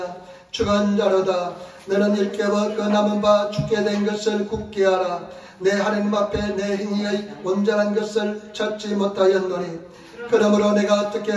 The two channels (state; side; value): identical; both; correlation 1.00